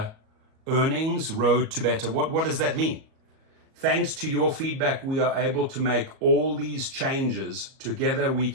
earnings? Road to better. What does that mean? Thanks to your feedback, we are able to make all these changes. Together, we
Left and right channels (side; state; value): left; late; 38 ms